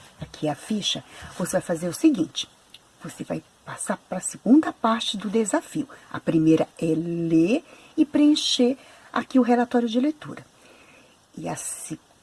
aqui a ficha, você vai fazer o seguinte. Você vai passar para a segunda parte do desafio. A primeira é ler e preencher aqui o relatório de leitura. E a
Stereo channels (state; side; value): identical; both; correlation 1.00